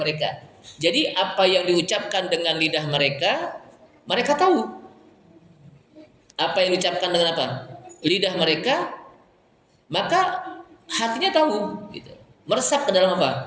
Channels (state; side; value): identical; both; correlation 1.00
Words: Jadi apa yang diucapkan dengan lidah mereka, mereka tahu. Apa yang diucapkan dengan apa? Lidah mereka, maka hatinya tahu, gitu. Meresap ke dalam